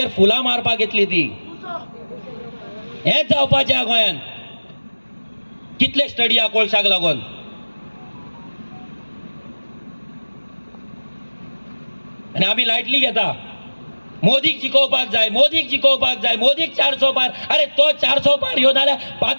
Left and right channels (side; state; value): both; inverted; correlation -1.00